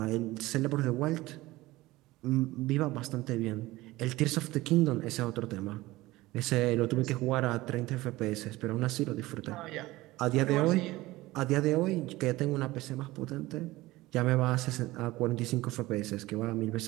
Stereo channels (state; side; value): quieter; left; 18.8 dB